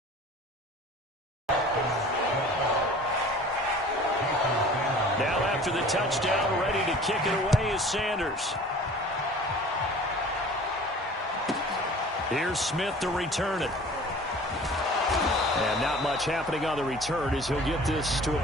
Now after the touchdown, ready to kick it away is Sanders. Here's Smith to return it. And not much happening on the return as he'll get this to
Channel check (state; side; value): normal; both; correlation 0.45